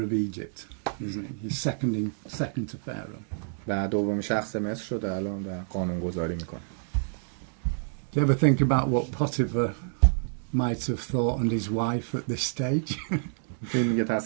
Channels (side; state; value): left; silent; digital silence